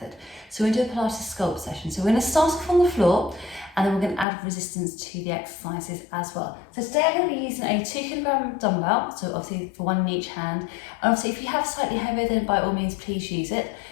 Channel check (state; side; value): drops out; right; at 4.2 s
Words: So we're going to do a Pilates Sculpt session. So we're going to start off on the floor and then we're going to add resistance to the exercises as well. So today I'm going to be using a 2 kilogram dumbbell, so obviously for one in each hand. And obviously if you have slightly heavier, then by all means please use it.